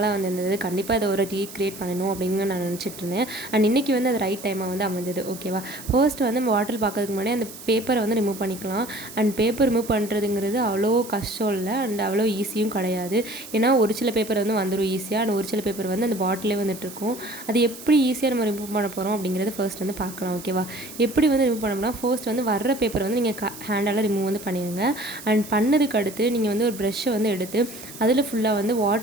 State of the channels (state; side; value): noise; right; hiss, 15 dB below the sound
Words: வந்து இருந்தது. கண்டிப்பாக இதை ஒரு ரீக்ரியேட் பண்ணணும் அப்படின்னு நான் நினச்சிட்டு இருந்தேன். அண்ட் இன்றைக்கி வந்து அது ரைட் டைமாக வந்து அமைஞ்சது. ஓகேவா, ஃபர்ஸ்ட் வந்து நம்ம பாட்டில் பார்க்கறதுக்கு முன்னாடி அந்த பேப்பரை வந்து ரிமூவ் பண்ணிக்கலாம். அண்ட் பேப்பர் ரிமூவ் பண்ணுறதுங்கிறது அவ்வளோ கஷ்டம் இல்லை, அண்ட் அவ்வளோ ஈஸியும் கிடையாது. ஏன்னா ஒரு சில பேப்பர் வந்து வந்துடும் ஈஸியாக, அண்ட் ஒரு சில பேப்பர் வந்து அந்த பாட்டிலே வந்துட்டுருக்கும். அது எப்படி ஈஸியாக நம்ம ரிமூவ் பண்ண போகிறோம் அப்படிங்கிறது ஃபர்ஸ்ட் வந்து பார்க்கலாம். ஓகேவா, எப்படி வந்து ரிமூவ் பண்ணோம்னா, ஃபர்ஸ்ட் வந்து வர்ற பேப்பரை வந்து நீங்கள் ஹேண்டால் ரிமூவ் வந்து பண்ணிடுங்க. அண்ட் பண்ணதுக்கு அடுத்து நீங்கள் வந்து ஒரு ப்ரெஷ்ஷை வந்து எடுத்து அதில் ஃபுல்லாக வந்து